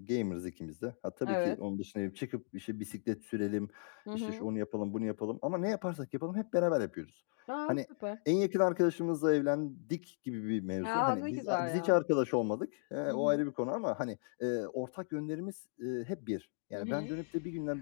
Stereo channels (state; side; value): silent; right; digital silence